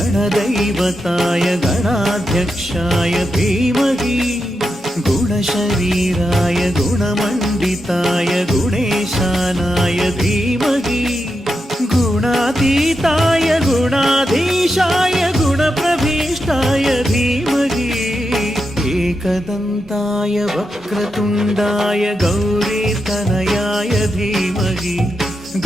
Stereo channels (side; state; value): both; normal; correlation 0.86